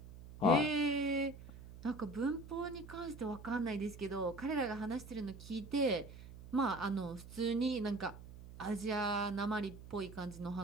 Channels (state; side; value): noise; right; hum, 15 dB below the sound